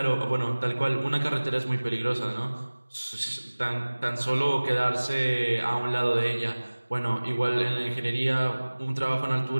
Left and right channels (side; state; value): both; inverted; correlation -1.00